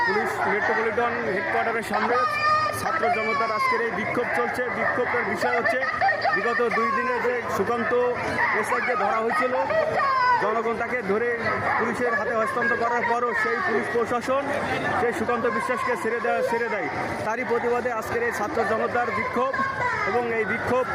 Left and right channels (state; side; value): identical; both; correlation 1.00